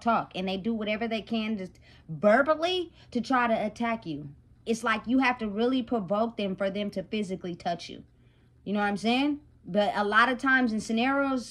And they do whatever they can just verbally to try to attack you. It's like you have to really provoke them for them to physically touch you. You know what I'm saying? But a lot of times in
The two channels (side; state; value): both; identical; correlation 1.00